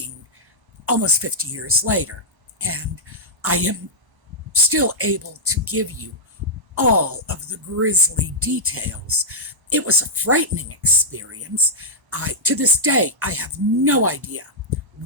almost 50 years later, and I am still able to give you all of the grisly details. It was a frightening experience. To this day, I have no idea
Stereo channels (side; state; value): left; late; 1.0 ms